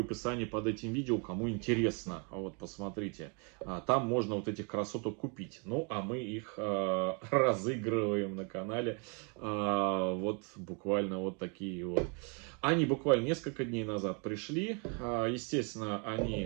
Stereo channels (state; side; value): quieter; left; 35.0 dB